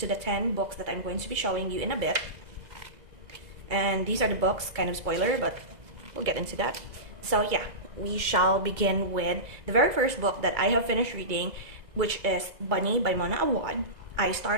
the 10 books that I'm going to be showing you in a bit. And these are the books, kind of spoiler, but we'll get into that. So yeah, we shall begin with the very first book that I have finished reading, which is Bunny by Mona Awad. I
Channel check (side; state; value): left; late; 2.0 ms